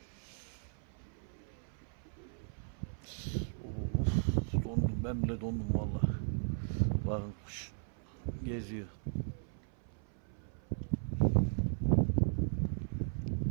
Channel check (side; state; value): left; silent; 53 dB below the other